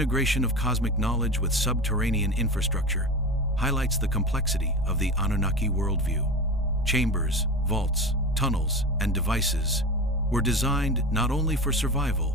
of cosmic knowledge with subterranean infrastructure highlights the complexity of the Anunnaki worldview. Chambers, vaults, tunnels, and devices were designed not only for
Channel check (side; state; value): both; normal; correlation 0.27